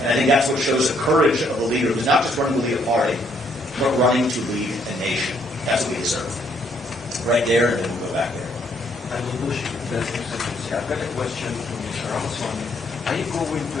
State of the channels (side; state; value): both; normal; correlation 0.69